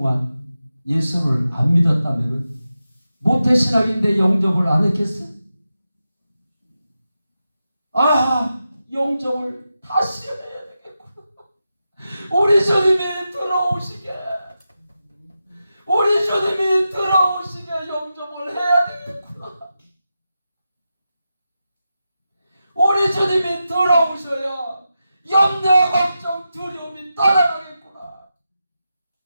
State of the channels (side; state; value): both; inverted; correlation -0.90